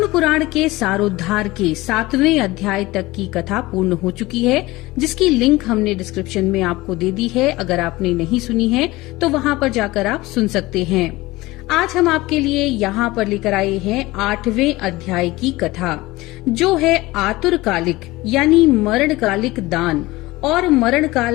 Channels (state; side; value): quieter; right; 19.9 dB